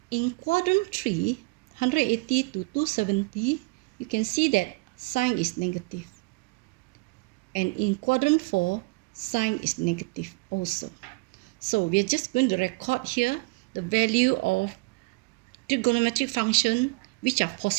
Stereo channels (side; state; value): left; quieter; 27.1 dB